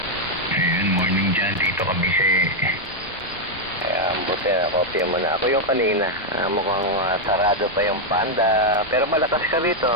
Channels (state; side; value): normal; both; correlation 0.00